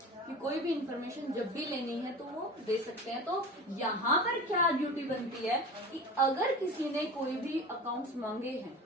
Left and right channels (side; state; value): both; normal; correlation 0.33